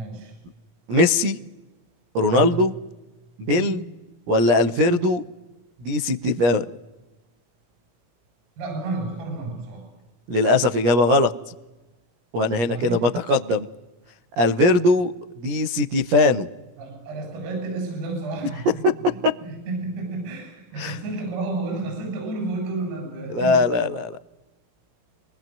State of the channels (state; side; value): late; left; 17 ms